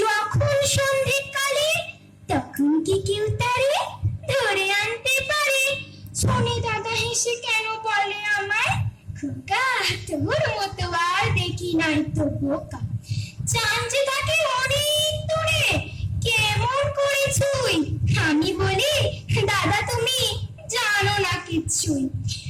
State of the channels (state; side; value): identical; both; correlation 1.00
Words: যখন সন্ধ্যেকালে, তখন কি কেউ তারে ধরে আনতে পারে? শুনে দাদা হেসে কেন বলে আমায়, খোকা তোর মতো আর দেখি নাই তো বোকা। চাঁদ যে থাকে অনেক দূরে, কেমন করে ছুঁই? আমি বলি দাদা তুমি জানো না কিচ্ছুই।